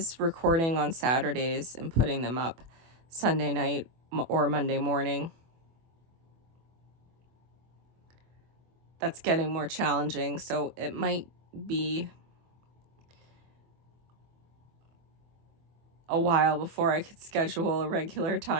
recording on Saturdays and putting them up Sunday night or Monday morning. That's getting more challenging, so it might be a while before I could schedule a regular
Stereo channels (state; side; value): late; left; 24 ms